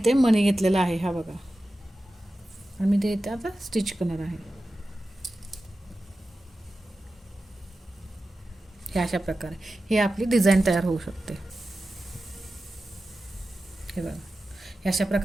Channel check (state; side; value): normal; both; correlation 0.93